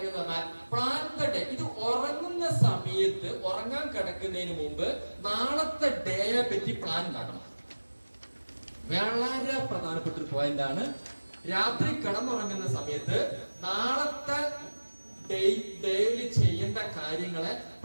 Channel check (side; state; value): both; inverted; correlation -1.00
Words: എന്ന് പറഞ്ഞാൽ പ്ലാൻ ദ ഡേ. ഇത് ഉറങ്ങുന്ന സമയത്ത്, ഉറങ്ങാൻ കിടക്കുന്നതിന് മുമ്പ് നാളത്തെ ഡേയെ പറ്റി പ്ലാൻ ഉണ്ടാക്കണം. വളരെ പ്രധാനപ്പെട്ട ഒരു പോയിന്റ് ആണ്. രാത്രി കിടന്നുറങ്ങുന്ന സമയത്ത് നാളത്തെ ഡെയിലി ചെയ്യേണ്ട കാര്യങ്ങളെ